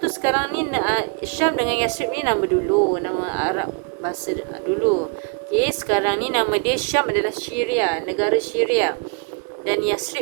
sekarang ni Syam dengan Yasrib ni nama dulu, nama Arab bahasa dulu. Okey, sekarang ni nama dia Syam adalah Syria, negara Syria. Dan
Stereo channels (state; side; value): quieter; left; 37.9 dB